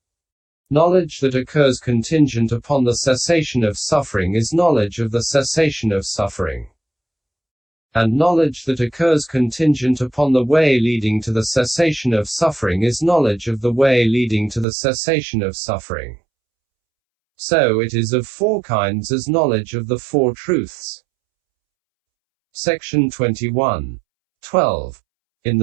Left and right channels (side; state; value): left; drops out; at 14.7 s